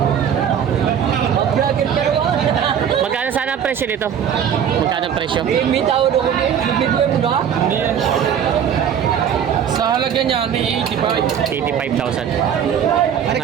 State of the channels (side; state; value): left; quieter; 8.5 dB